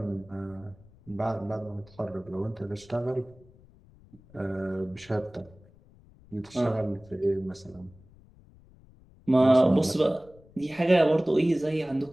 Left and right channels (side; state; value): left; noise; rumble, 26 dB below the sound